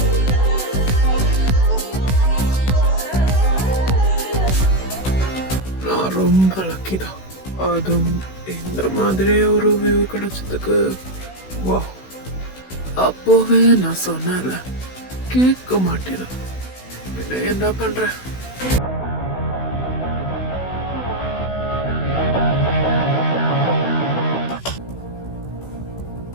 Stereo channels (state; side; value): late; right; 16 ms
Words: நான் ரொம்ப லக்கி தான். அதுவும் இந்த மாதிரி ஒரு வியூ கிடைச்சதுக்கு வா. அப்போவே நான் சொன்னேன்ல, கேட்க மாட்டேன். பின்ன என்ன பண்ற?